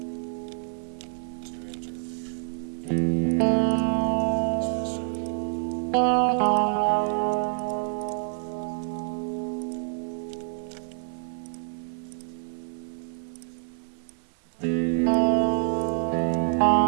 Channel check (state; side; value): silent; left; digital silence